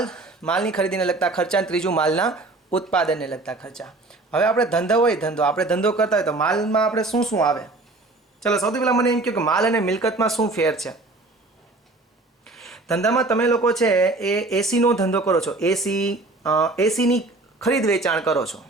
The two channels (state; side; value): quieter; left; 3.1 dB